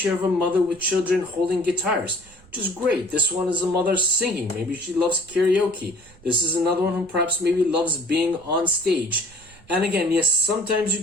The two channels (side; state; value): right; noise; rumble, 26 dB below the sound